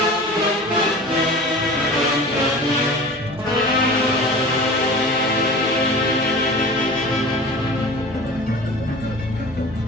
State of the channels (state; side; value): normal; both; correlation 0.38